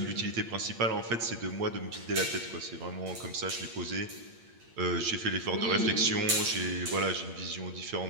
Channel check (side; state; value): left; late; 8.7 ms